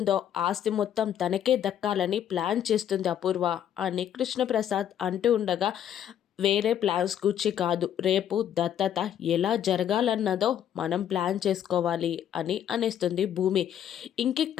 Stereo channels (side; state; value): right; quieter; 10.1 dB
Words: ఆస్తి మొత్తం తనకే దక్కాలని ప్లాన్ చేస్తుంది అపూర్వ అని కృష్ణప్రసాద్ అంటూ ఉండగా, వేరే ప్లాన్స్ గురించి కాదు, రేపు దత్తత ఎలా జరగాలన్నదో మనం ప్లాన్ చేసుకోవాలి అని అనేస్తుంది భూమి.